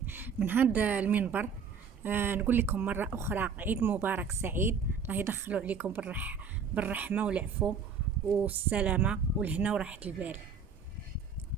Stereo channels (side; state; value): left; quieter; 5.9 dB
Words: من هذا المنبر نقول لكم مرة أخرى عيد مبارك سعيد. الله يدخلوا عليكم بالرحمة والعفو والسلامة والهنا وراحة البال.